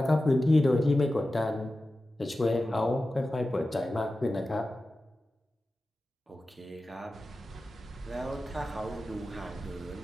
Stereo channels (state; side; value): normal; both; correlation 0.94